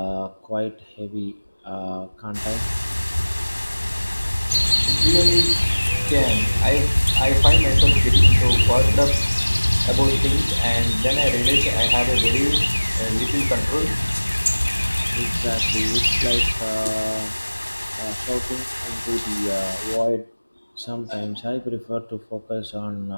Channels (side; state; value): both; inverted; correlation -1.00